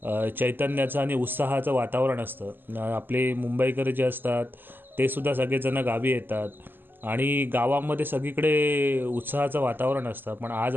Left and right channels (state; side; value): late; left; 0.093 ms